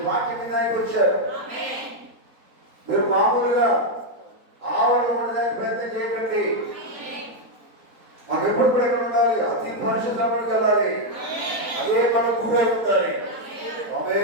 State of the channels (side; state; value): left; late; 4.1 ms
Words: వాక్యం వినడానికి వచ్చారు. మీరు మామూలుగా ఆవరణ ఉండడానికి ప్రయత్నం చేయకండి. మాకు ఎప్పుడు కూడా ఎక్కడ ఉండాలి? అతి పరిశుద్ధంలోకి వెళ్ళాలి. అదే మనం గురై ఉండాలి.